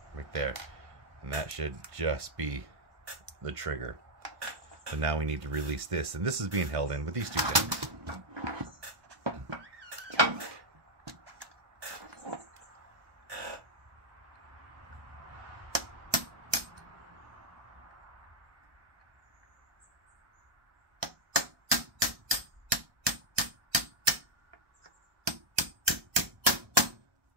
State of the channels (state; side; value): late; left; 1.1 ms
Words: Right there. And that should just be the trigger. So now we need to release this, and this is being held in with these two pins.